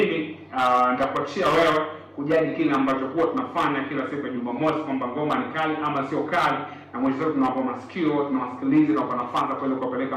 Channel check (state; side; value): identical; both; correlation 1.00